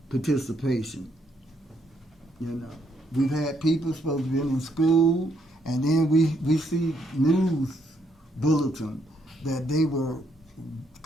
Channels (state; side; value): normal; both; correlation 0.73